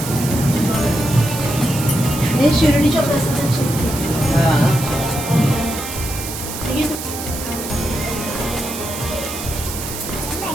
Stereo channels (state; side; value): noise; right; hiss, 8 dB below the sound